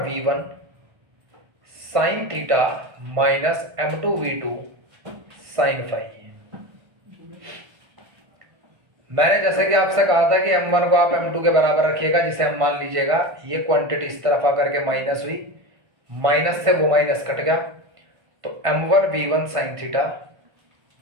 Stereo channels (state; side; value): late; left; 1.5 ms